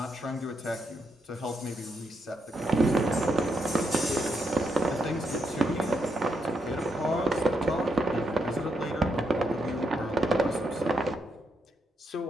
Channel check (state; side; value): normal; both; correlation 0.80